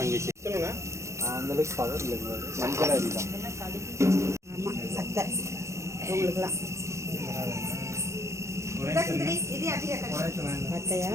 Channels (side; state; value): left; late; 0.14 ms